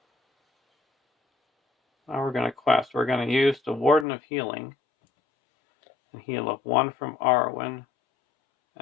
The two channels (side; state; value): right; drops out; at 4.0 s